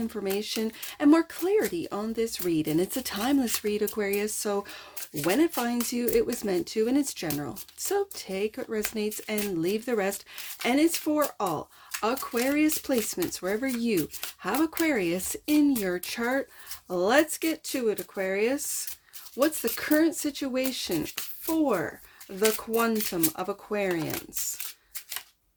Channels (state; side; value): identical; both; correlation 1.00